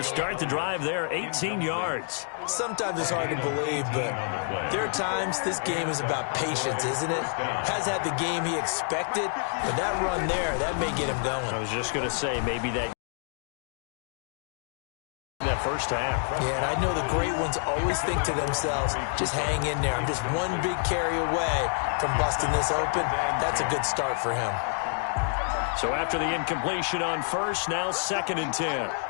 start the drive there, 18 yards. Sometimes it's hard to believe, but there are times this game is about patience, isn't it? Has had the game he expected, but that run there, that may get him going. I was just going to say, maybe that first half. Yeah, and I know the great ones always think to themselves, just hang in there. I'm just one big carry away from busting this open. That's a good start for him. So after the incompletion on first, now 2nd and 10.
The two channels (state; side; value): silent; right; 59 dB below the other